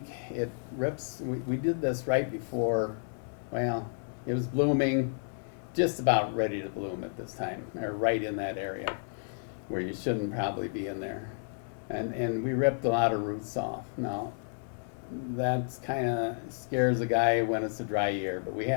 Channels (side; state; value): right; silent; digital silence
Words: it rips, we did this right before, well, it was blooming, just about ready to bloom at this time, or right in that area where you shouldn't probably be in there. And we ripped a lot of roots off. Now, that's kind of scares a guy when it's a dry year, but we